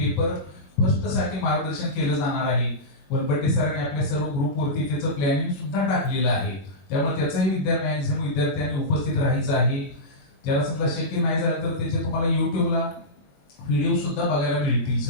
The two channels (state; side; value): late; right; 22 ms